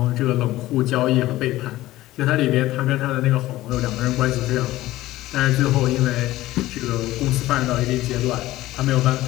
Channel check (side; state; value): right; quieter; 16.4 dB